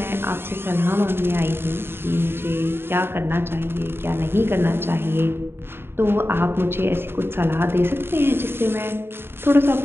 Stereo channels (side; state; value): left; late; 0.11 ms